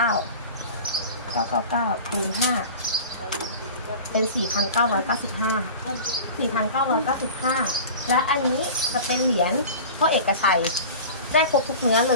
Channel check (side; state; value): both; inverted; correlation -0.36